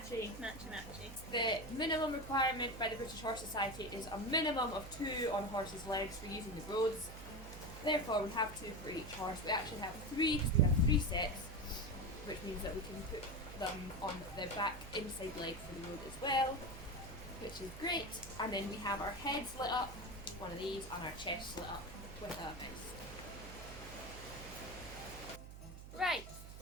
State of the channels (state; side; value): noise; right; hum, 12 dB below the sound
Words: Matchy-matchy. The minimum requirement by the British Horse Society is a minimum of 2 on a horse's legs for using the roads. Therefore, we have 2 for each horse. We actually have 3 because we have 3 sets, which means that we can put them on the back inside leg for the road as well, which is great. And then we have our heads lit up, one of these, and our chests lit up with a mouse. Right.